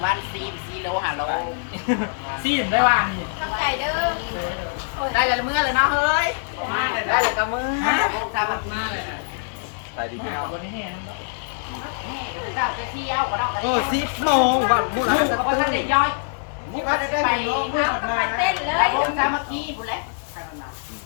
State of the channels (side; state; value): right; silent; digital silence